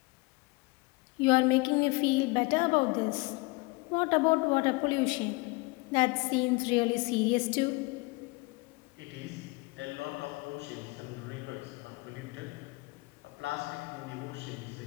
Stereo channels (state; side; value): quieter; right; 25.5 dB